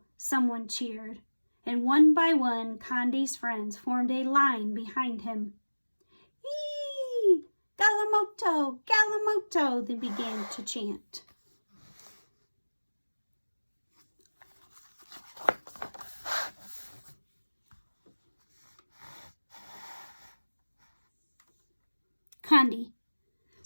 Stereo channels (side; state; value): both; inverted; correlation -1.00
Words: someone cheered, and one by one Condi's friends formed a line behind him. "Eee! Galimoto! Galimoto!" they began to chant. Condi